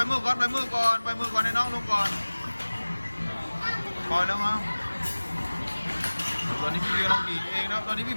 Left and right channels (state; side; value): inverted; both; correlation -1.00